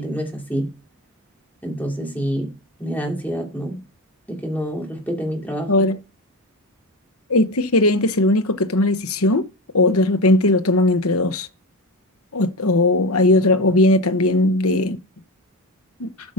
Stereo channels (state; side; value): normal; both; correlation 0.22